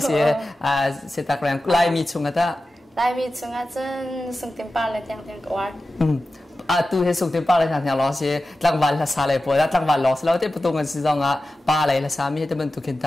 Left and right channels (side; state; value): both; normal; correlation 0.94